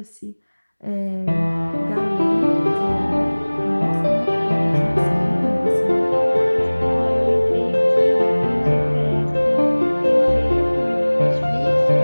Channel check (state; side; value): inverted; both; correlation -1.00